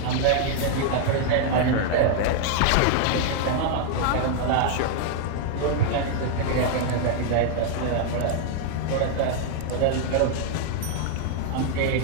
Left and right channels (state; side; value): different; both; correlation 0.00